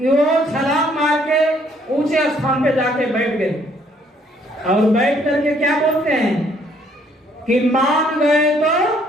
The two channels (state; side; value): normal; both; correlation 0.65